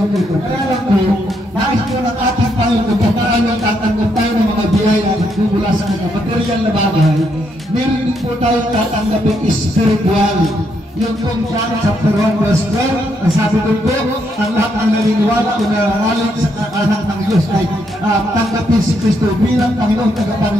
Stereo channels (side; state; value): both; normal; correlation 0.76